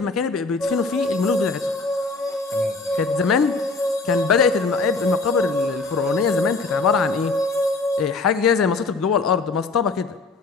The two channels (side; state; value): right; quieter; 3.9 dB